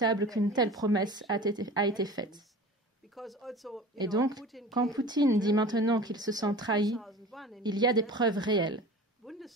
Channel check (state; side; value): normal; both; correlation 0.38